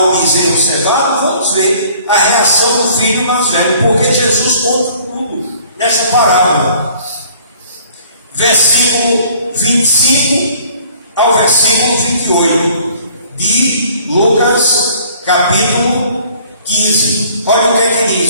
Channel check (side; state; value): both; inverted; correlation -0.55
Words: o bezerro cevado? Vamos ver a reação do filho mais velho, porque Jesus conta tudo nessa parábola. Versículo 25 ao versículo 28 de Lucas capítulo 15. Olha o que é que